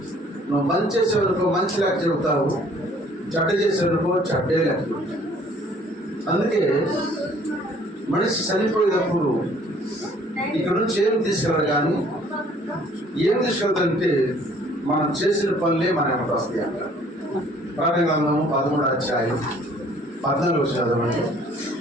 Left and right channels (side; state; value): both; normal; correlation 0.57